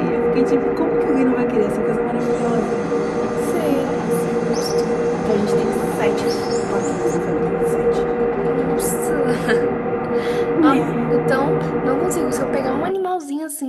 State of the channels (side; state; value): both; identical; correlation 1.00